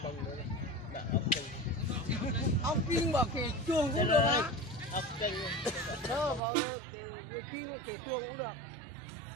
bông nữa, bảo áo kênh. Áo kinh bảo kể chuồng cũng được á. Áo kênh. Đó vào cái kinh kể chuồng cũng được.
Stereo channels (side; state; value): left; drops out; at 6.4 s